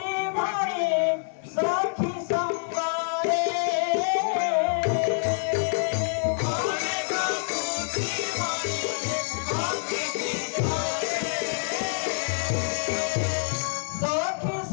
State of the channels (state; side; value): silent; right; digital silence